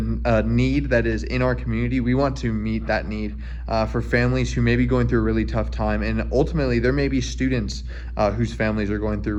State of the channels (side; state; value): both; identical; correlation 1.00